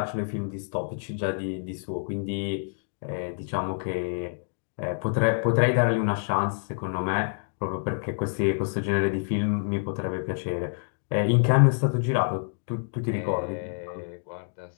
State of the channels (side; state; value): right; silent; digital silence